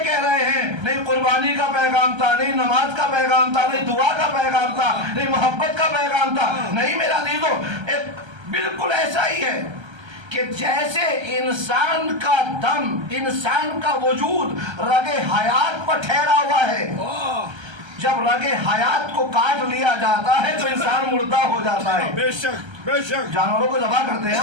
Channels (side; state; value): left; late; 1.3 ms